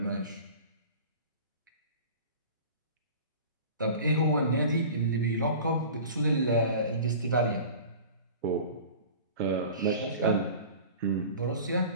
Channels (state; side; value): inverted; both; correlation -0.39